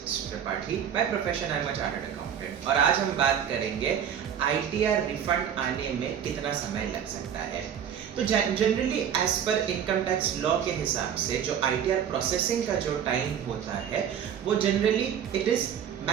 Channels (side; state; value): left; quieter; 8.8 dB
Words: Tripathi, by profession I am a chartered accountant और आज हम बात करेंगे आईटीआर रिफंड आने में कितना समय लग सकता है। तो जनरली एज पर इनकम टैक्स लॉ के हिसाब से जो आईटीआर प्रोसेसिंग का जो टाइम होता है वो generally it is